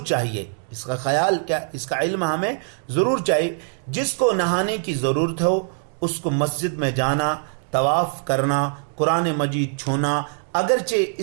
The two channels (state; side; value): silent; left; digital silence